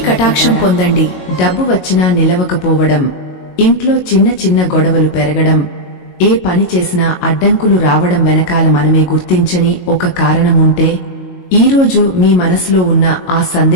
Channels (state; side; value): late; right; 22 ms